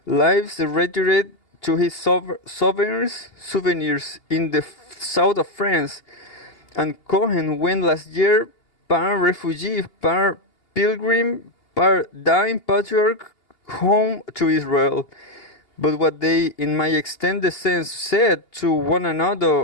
lives retired to his souvenirs in the south of France, and Cohen went last year par refugee, par pilgrim, par dying patriarch home to Israel. But what they, in my extended sense, said to one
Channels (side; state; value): right; late; 2.8 ms